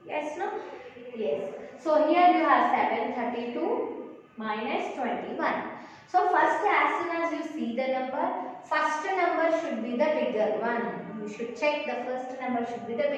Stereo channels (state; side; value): identical; both; correlation 1.00